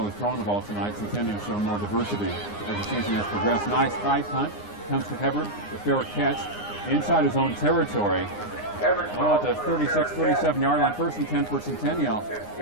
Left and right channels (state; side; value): late; right; 9.7 ms